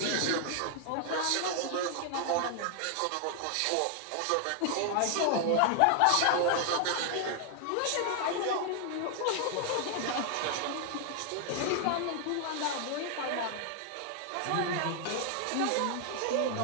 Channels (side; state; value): both; different; correlation 0.00